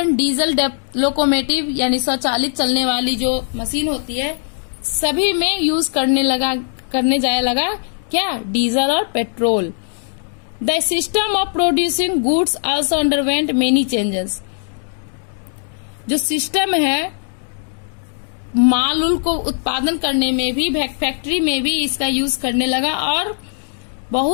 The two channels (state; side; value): silent; right; digital silence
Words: diesel locomotive यानी स्वचालित चलने वाली जो मशीन होती है, सभी में यूज करने जाया लगा क्या? डीजल और petrol. The system of producing goods also underwent many changes, जो सिस्टम है माल उल को उत्पादन करने में भी, फैक्ट्री में भी इसका यूज करने लगा, और